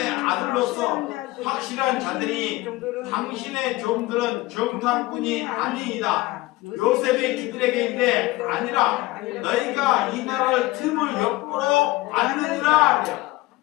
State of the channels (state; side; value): quieter; right; 19.5 dB